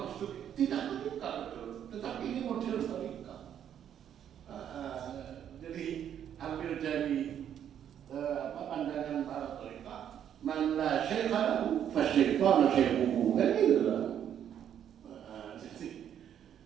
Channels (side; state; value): left; quieter; 9.5 dB